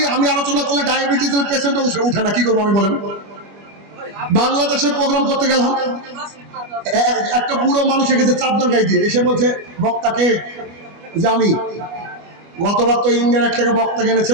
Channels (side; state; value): left; late; 25 ms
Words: আমি আলোচনা করলে ডায়াবেটিসের পেশেন্টও উঠে না, কি করবো আমি বলেন? বাংলাদেশে প্রোগ্রাম করতে গেলাম, একটা বুড়ো মানুষ এসেছে চাদর গায়ে দিয়ে, এসে বলছে বক্তাকে যে আমি গতবার তো ইন্ডিয়ান এক থেকে বক্তা